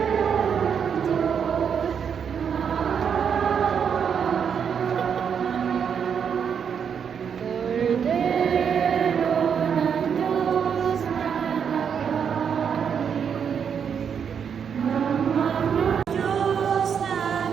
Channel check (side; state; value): left; quieter; 7.3 dB